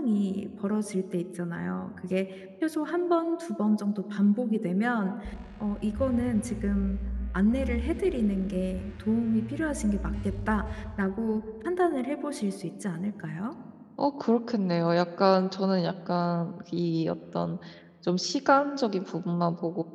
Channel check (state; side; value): identical; both; correlation 1.00